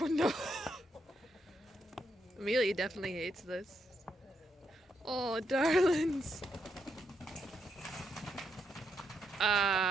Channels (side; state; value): both; normal; correlation 0.80